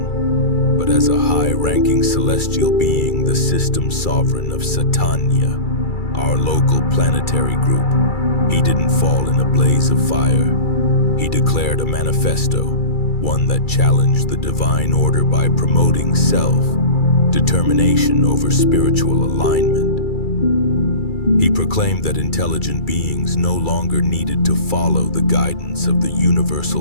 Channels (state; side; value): late; right; 2.3 ms